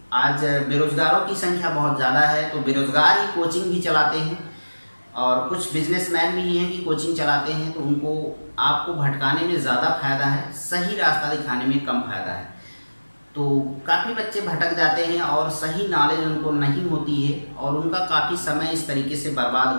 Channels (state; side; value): inverted; both; correlation -1.00